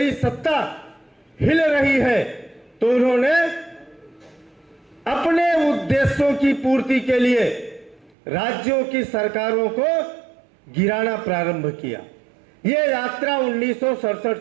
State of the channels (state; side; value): drops out; left; at 8.2 s